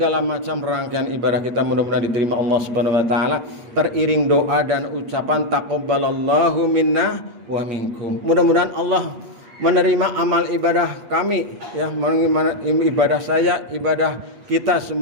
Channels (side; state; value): left; late; 8.3 ms